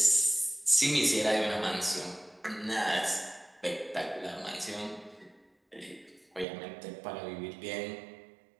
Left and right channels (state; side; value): drops out; left; at 6.5 s